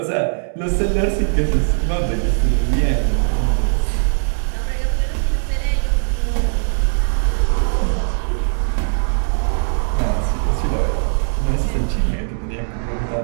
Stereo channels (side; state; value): left; silent; digital silence